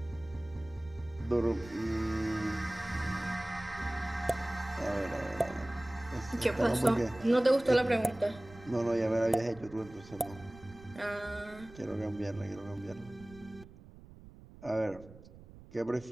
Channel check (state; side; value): noise; right; rumble, 19 dB below the sound